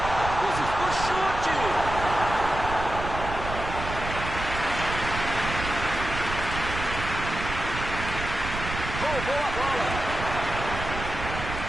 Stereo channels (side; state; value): right; noise; rumble, 7 dB below the sound